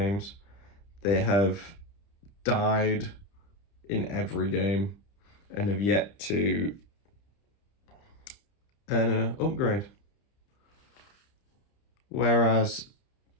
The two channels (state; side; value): late; right; 30 ms